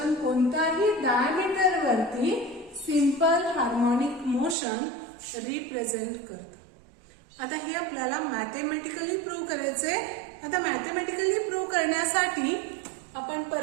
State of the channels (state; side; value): drops out; left; at 4.5 s